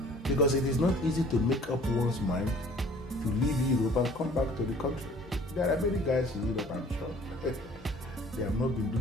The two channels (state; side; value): normal; both; correlation 0.52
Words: Because it is not easy to make up one's mind to leave Europe and come back to the country. There are many guys in Europe, I'm sure. They have not been